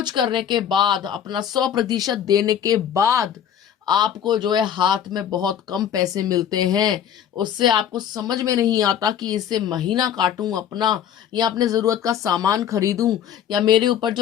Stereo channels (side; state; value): right; quieter; 9.3 dB